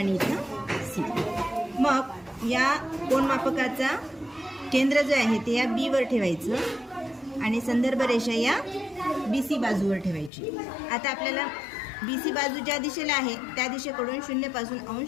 इथं C. मग या कोन मापकाचा केंद्र जे आहे ते या B वर ठेवायचं आणि संदर्भ रेषा या BC बाजूवर ठेवायची. आता आपल्याला BC बाजू ज्या दिशेला आहे त्या दिशेकडून 0 पासून अंश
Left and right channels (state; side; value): drops out; right; at 10.3 s